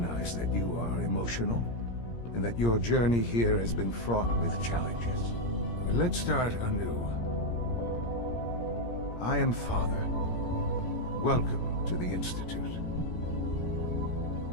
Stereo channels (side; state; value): right; late; 17 ms